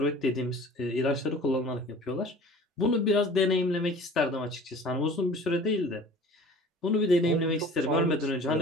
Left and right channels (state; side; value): normal; both; correlation 0.45